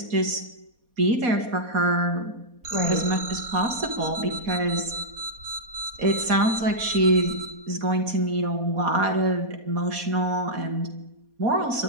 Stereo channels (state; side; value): late; left; 4.2 ms